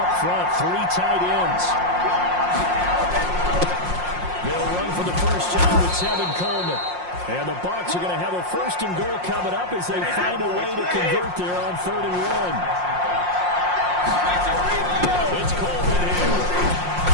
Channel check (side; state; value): left; late; 5.6 ms